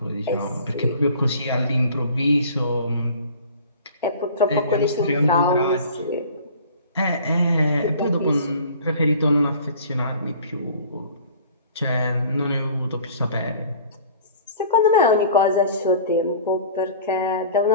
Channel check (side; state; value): both; inverted; correlation -0.45